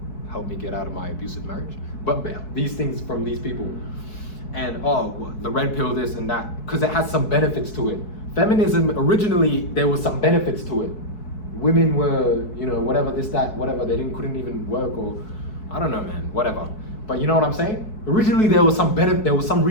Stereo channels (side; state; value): right; late; 4.6 ms